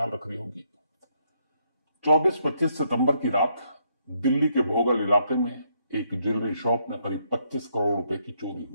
रख रही होगी। 24-25 सितंबर की रात दिल्ली के भोगल इलाके में एक ज्वेलरी शॉप में करीब 25 करोड़ रुपए की चोरी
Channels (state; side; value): inverted; both; correlation -0.74